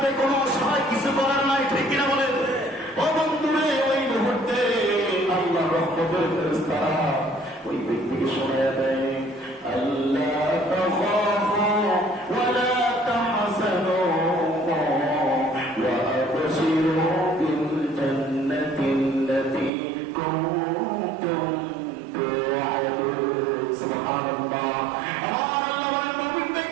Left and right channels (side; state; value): left; drops out; at 19.7 s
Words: কোনো সহায় কিছু করার নাই, ঠিক কিনা বলেন? ও বন্ধুরে, ওই মুহূর্তে আল্লাহ রহমতের ফেরেশতারা ওই ব্যক্তিকে শোনায়া দেয়, আল্লাহ তাখাফু ওয়া লা তাহজানু ওয়া আবশিরু বিল জান্নাতিল্লাতী কুনতুম তুআদুন। সুবহানাল্লাহ। আমার আল্লাহ বলেন, মুমিন